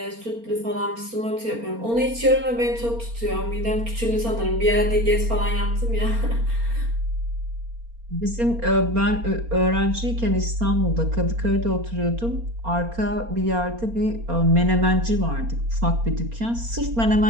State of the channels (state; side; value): late; left; 4.3 ms